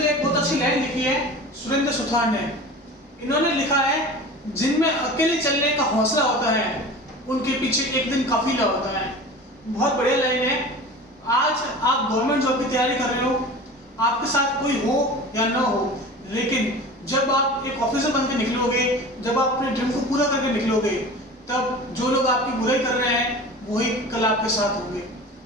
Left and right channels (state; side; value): normal; both; correlation 0.36